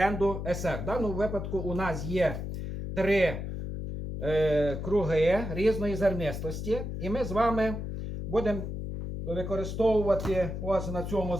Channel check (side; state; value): left; noise; hum, 5 dB below the sound